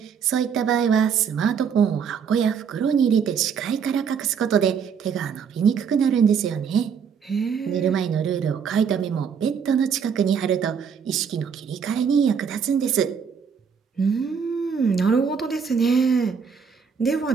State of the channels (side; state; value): left; quieter; 6.8 dB